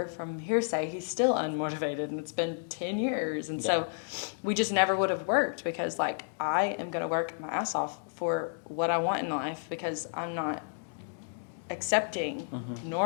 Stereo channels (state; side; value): silent; right; digital silence